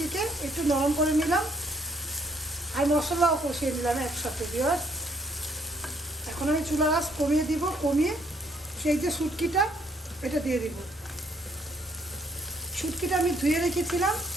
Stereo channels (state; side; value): normal; both; correlation 0.68